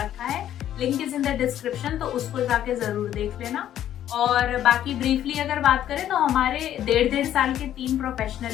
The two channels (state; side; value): quieter; right; 11.4 dB